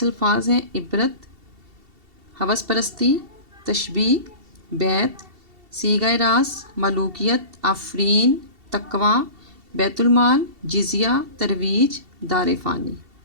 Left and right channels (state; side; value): late; left; 2.7 ms